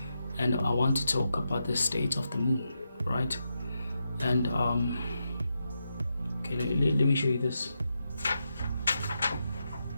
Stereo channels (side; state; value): both; inverted; correlation -0.86